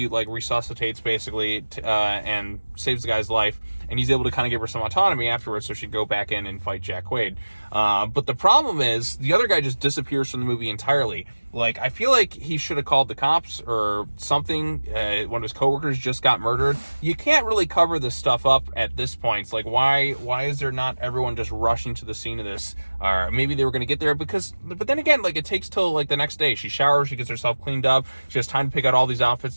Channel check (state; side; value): inverted; both; correlation -1.00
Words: like resuscitates basically and saves the guy's life, and he's able to kind of give her some autonomy afterwards, so she'd go back in and fight Jack Quaid. But the problem is the other guy just disappears from the movie entirely. Like, I feel like he should have called the cops or something. One of his coworkers just got murdered. You can't really cover this stuff up at this point. It's like, why is there not everyone just rushing to the scene of this? Or maybe they were going to get there but then again, like, it takes till like the next day. She showers, she gets herself cleaned up, she has time to pick out all these outfits,